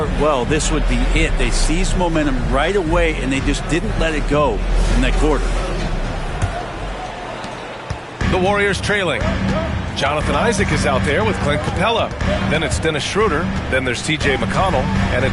well, this would be it. They seized momentum right away, and they just didn't let it go in that quarter. The Warriors trailing. Jonathan Isaac is out there with Clint Capella. Then it's Dennis Schroeder. Then there's T.J. McConnell. And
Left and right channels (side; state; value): both; identical; correlation 1.00